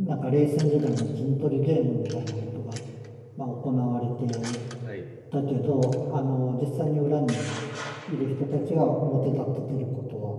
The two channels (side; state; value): both; identical; correlation 1.00